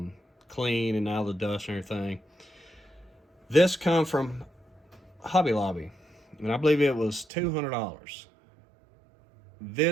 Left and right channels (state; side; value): drops out; left; at 7.2 s